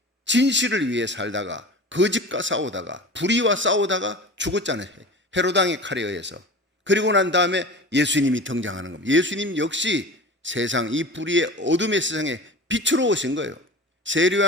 진실을 위해 살다가 거짓과 싸우다가 불의와 싸우다가 죽었잖아요. 헤로당의 칼에 의해서. 그리고 난 다음에 예수님이 등장하는 겁니다. 예수님 역시 세상, 이 불의의 어둠의 세상에 빛으로 오신 거예요. 세례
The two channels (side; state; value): both; normal; correlation 0.35